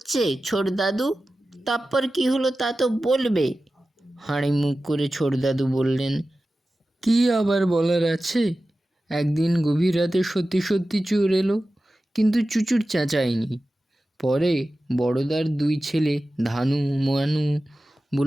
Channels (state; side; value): normal; both; correlation 0.95